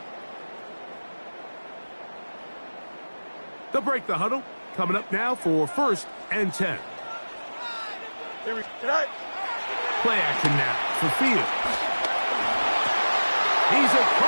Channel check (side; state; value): both; inverted; correlation -1.00